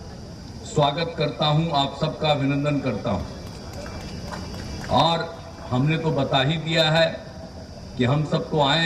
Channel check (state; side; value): identical; both; correlation 1.00